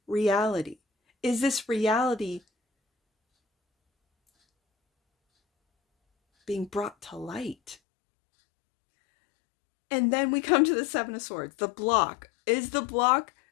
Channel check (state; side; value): drops out; right; at 7.8 s